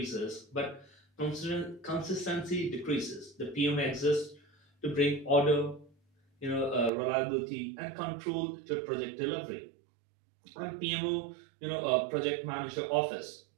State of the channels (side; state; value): left; drops out; at 6.9 s